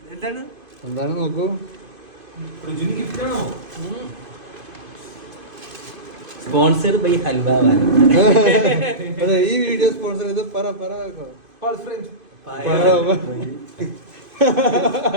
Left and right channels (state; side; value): late; left; 2.5 ms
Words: എന്താണ് നോക്കൂ. Sponsored by halwa. അതെ, ഈ വീഡിയോ സ്പോൺസർ ചെയ്ത് പറ